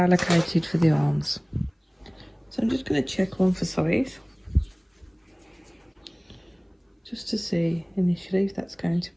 for the arms. So I'm just going to check one for size, just to see initially if that's going to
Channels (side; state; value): both; identical; correlation 1.00